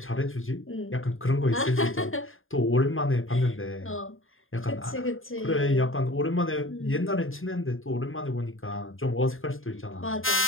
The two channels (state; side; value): late; right; 0.59 ms